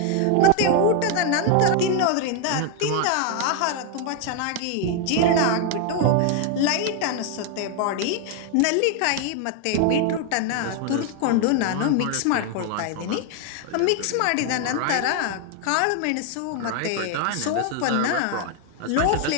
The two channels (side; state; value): both; different; correlation 0.00